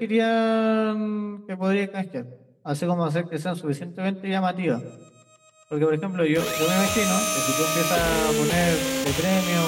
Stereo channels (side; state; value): both; identical; correlation 1.00